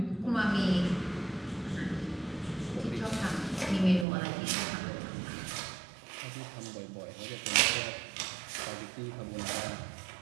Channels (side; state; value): left; drops out; at 4.0 s